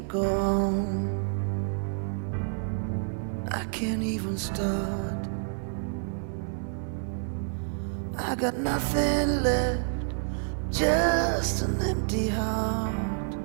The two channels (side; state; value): left; silent; 59 dB below the other